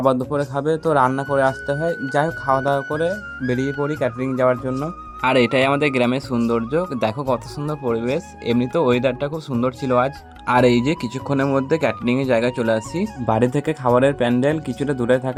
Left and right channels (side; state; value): both; identical; correlation 1.00